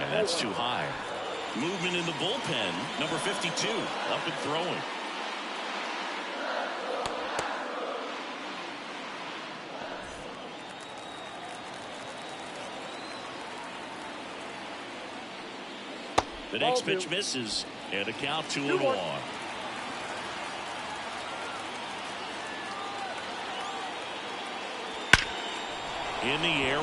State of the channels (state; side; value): identical; both; correlation 1.00